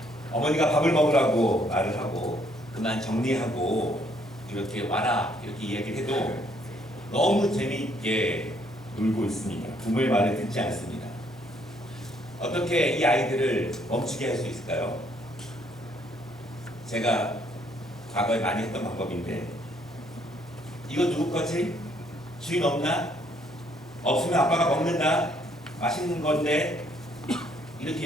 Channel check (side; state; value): both; normal; correlation 0.67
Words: 어머니가 밥을 먹으라고 말을 하고 그만 정리하고 이렇게 와라 이렇게 이야기를 해도 너무 재미있게 놀고 있습니다. 부모의 말을 듣지 않습니다. 어떻게 이 아이들을 멈추게 할 수 있을까요? 제가 과거에 많이 했던 방법인데, 이거 누구 거지? 주인 없나? 없으면 아빠가 먹는다. 맛있는 건데.